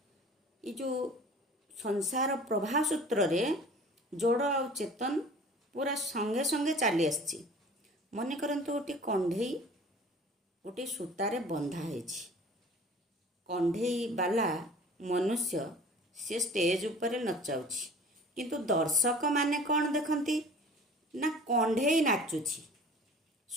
ଏ ଯେଉଁ ସଂସାର ପ୍ରବାହ ସୂତ୍ରରେ ଜଡ଼ ଆଉ ଚେତନ ପୁରା ସଙ୍ଗେ ସଙ୍ଗେ ଚାଲି ଆସିଛି। ମନେ କରନ୍ତୁ ଗୋଟିଏ କଣ୍ଢେଇ ଗୋଟିଏ ସୂତାରେ ବନ୍ଧା ହେଇଛି। କଣ୍ଢେଇ ବାଲା ମନୁଷ୍ୟ ସେ ଷ୍ଟେଜ ଉପରେ ନଚାଉଛି, କିନ୍ତୁ ଦର୍ଶକମାନେ କ'ଣ ଦେଖନ୍ତି ନା କଣ୍ଢେଇ ନାଚୁଛି।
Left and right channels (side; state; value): both; normal; correlation 0.45